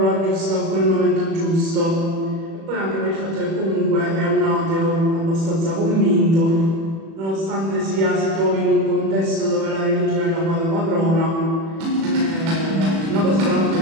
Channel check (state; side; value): late; left; 36 ms